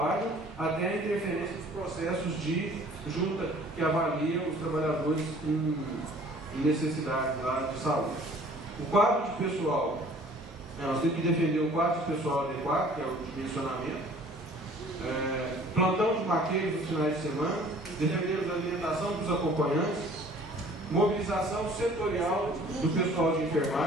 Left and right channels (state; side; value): normal; both; correlation 0.52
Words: até a interferência dos processos de junta que avalia os trabalhadores em necessidades lá de saúde. O quadro de pessoal, nós temos que defender o quadro de pessoal adequado, que é o dimensionamento, plantão de maqueiros nos finais de semana, defender a alimentação dos acompanhantes, mobilização setorial do pessoal de